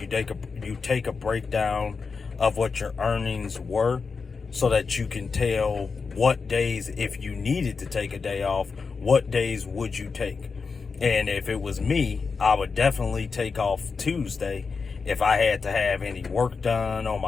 take a breakdown of what your earnings were, so that you can tell what days, if you needed to take a day off, what days would you take. And if it was me, I would definitely take off Tuesday if I had to have any work done on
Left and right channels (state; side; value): quieter; right; 5.0 dB